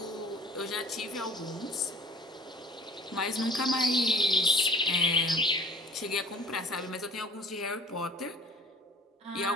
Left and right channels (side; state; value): both; normal; correlation 0.48